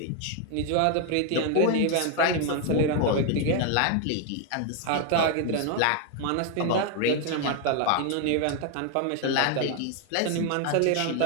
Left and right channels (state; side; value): different; both; correlation 0.01